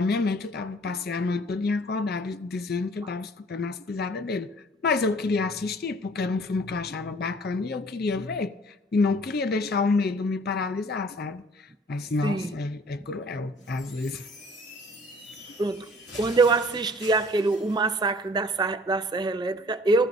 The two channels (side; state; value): both; normal; correlation 0.53